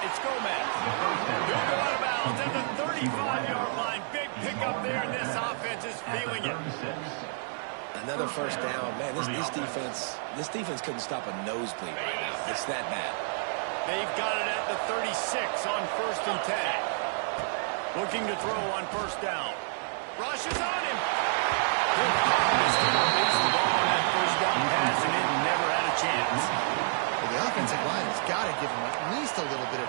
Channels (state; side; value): silent; left; 58 dB below the other